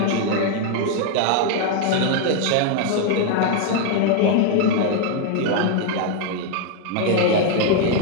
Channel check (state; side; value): different; both; correlation 0.01